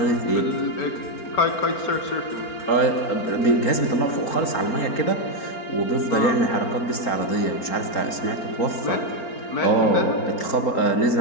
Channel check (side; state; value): right; late; 4.4 ms